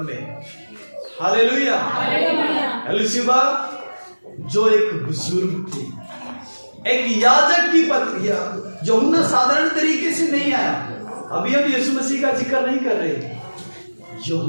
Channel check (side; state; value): both; inverted; correlation -1.00